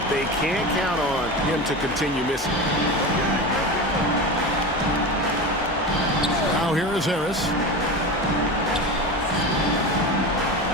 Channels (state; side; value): normal; both; correlation 0.26